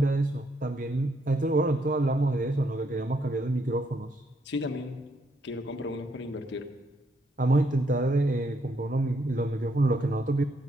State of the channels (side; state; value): both; normal; correlation 0.74